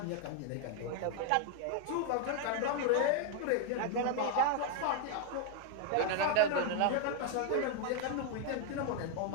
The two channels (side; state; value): both; different; correlation 0.00